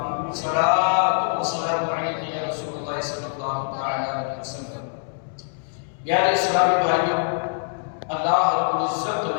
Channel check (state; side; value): silent; right; digital silence